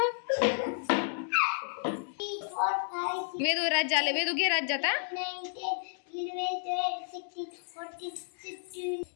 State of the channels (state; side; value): silent; right; digital silence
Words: वेदू राज्य आले. वेदू घे राज्य आता.